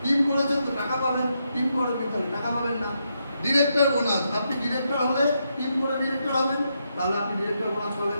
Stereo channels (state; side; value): inverted; both; correlation -0.81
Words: টিম করেছেন তো টাকা পাবেন, টিম করেন তাহলে টাকা পাবেন না। ডিরেক্টর বোনাস, আপনি ডিরেক্টর হলে টিম করে ডিরেক্টর হবেন, তাহলে আপনি ডিরেক্টর বোনাস